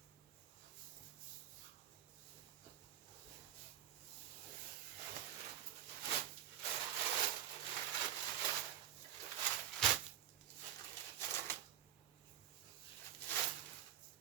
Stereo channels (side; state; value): left; quieter; 11.1 dB